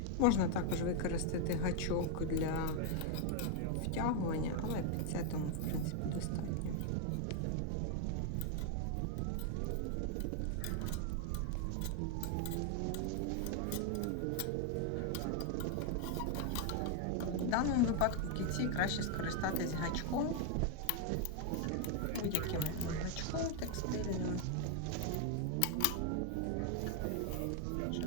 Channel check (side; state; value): both; different; correlation 0.00